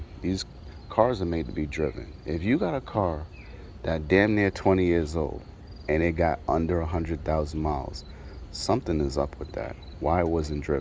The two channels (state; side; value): identical; both; correlation 1.00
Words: these cars are made to be driven. If you got a car that damn near 20 years old and it got under 100,000 miles, something is up with that. Why it wasn't